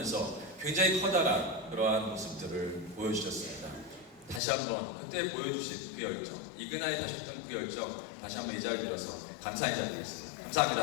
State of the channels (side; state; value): right; drops out; at 4.4 s